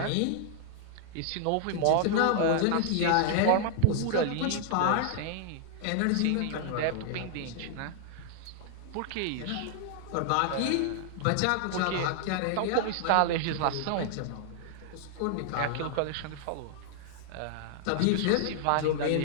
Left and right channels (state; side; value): different; both; correlation -0.01